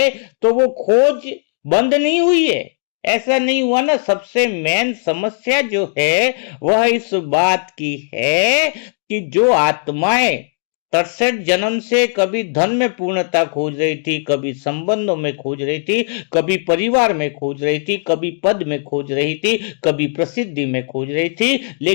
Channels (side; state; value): right; silent; digital silence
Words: तो वो खोज बंद नहीं हुई है। ऐसा नहीं हुआ ना। सबसे मेन समस्या जो है वह इस बात की है कि जो आत्माएं 63 जन्म से कभी धन में पूर्णता खोज रही थी, कभी संबंधों में खोज रही थी, कभी परिवार में खोज रही थी, कभी पद में खोज रही थी, कभी प्रसिद्धि में खोज रही थी,